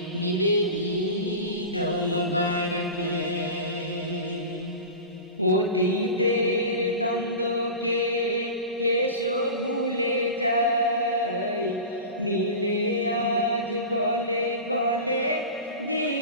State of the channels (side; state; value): both; inverted; correlation -0.30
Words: মিলে ঈদ মুবারক। অতীতের দ্বন্দ্বকে এসো ভুলে যাই, মিলে আজ গলে গলে